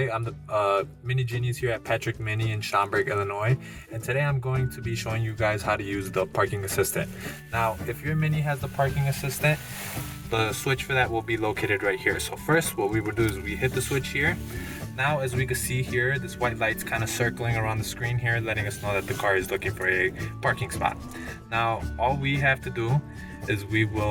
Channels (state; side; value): identical; both; correlation 1.00